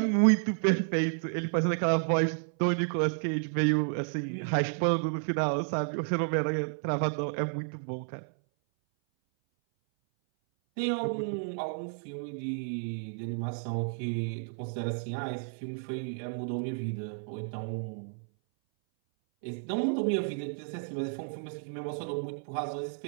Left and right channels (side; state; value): left; silent; 57 dB below the other